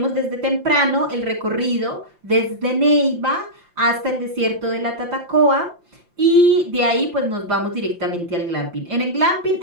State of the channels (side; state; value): left; late; 5.8 ms